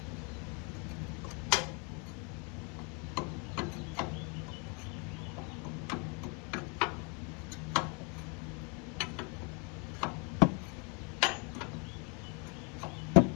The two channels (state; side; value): quieter; right; 33.8 dB